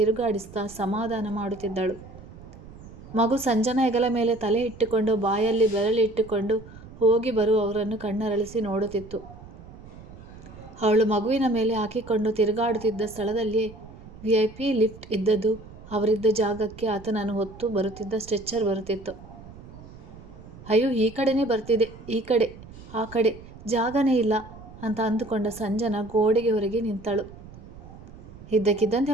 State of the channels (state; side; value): noise; right; rumble, 17 dB below the sound